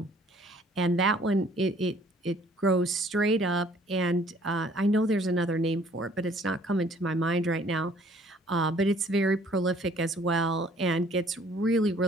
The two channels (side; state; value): both; normal; correlation 0.58